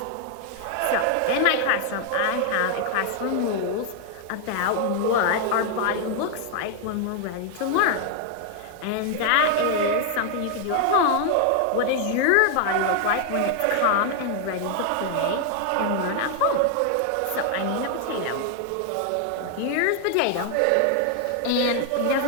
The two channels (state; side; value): different; both; correlation 0.00